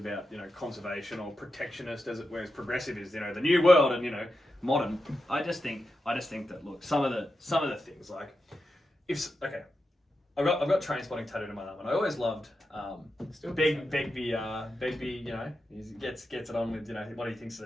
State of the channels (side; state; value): both; normal; correlation 0.89